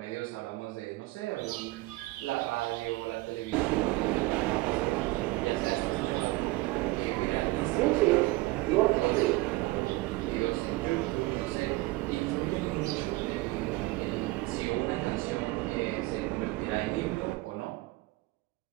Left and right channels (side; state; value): left; quieter; 20.6 dB